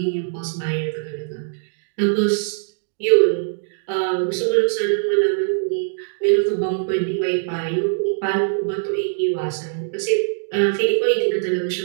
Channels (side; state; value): left; silent; digital silence